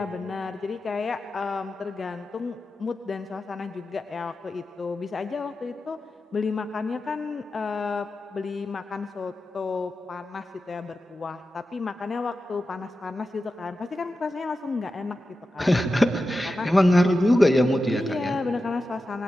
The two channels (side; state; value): both; normal; correlation 0.92